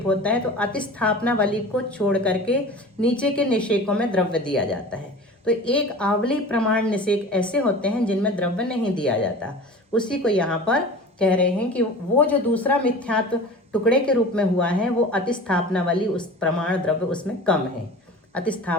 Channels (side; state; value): both; normal; correlation 0.37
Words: होता है तो अतिस्थापनावली को छोड़ करके नीचे के निषेकों में द्रव्य दिया जाता है। तो एक आवली प्रमाण निषेक ऐसे होते हैं जिनमें द्रव्य नहीं दिया जाता। उसी को यहाँ पर कह रहे हैं कि वो जो दूसरा मिथ्यात्व टुकड़े के रूप में हुआ है वो अतिस्थापनावली, उस प्रमाण द्रव्य उसमें कम है,